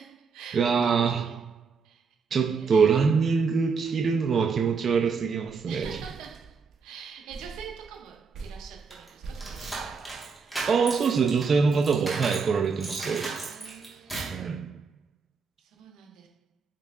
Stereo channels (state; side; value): quieter; left; 5.2 dB